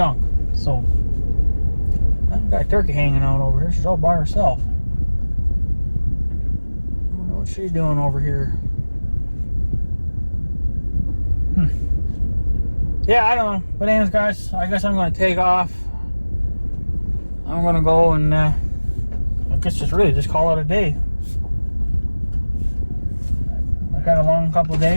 So I've got a turkey hanging out over here. She's all by herself. I wonder what she's doing over here. Yeah, I don't know. But anyways, guys, I guess I'm going to take off. I'm going to go and I guess just call it a day. Got a long couple of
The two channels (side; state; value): both; inverted; correlation -1.00